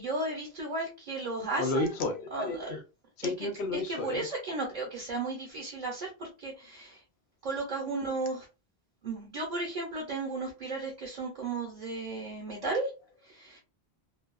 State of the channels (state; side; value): normal; both; correlation 0.10